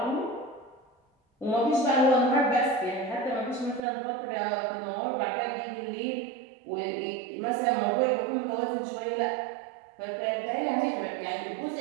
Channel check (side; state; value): left; drops out; at 3.8 s